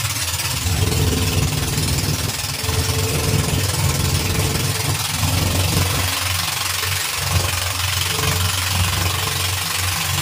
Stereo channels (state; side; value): identical; both; correlation 1.00